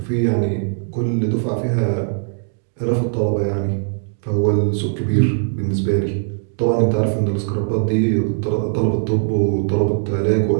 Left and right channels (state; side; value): silent; left; digital silence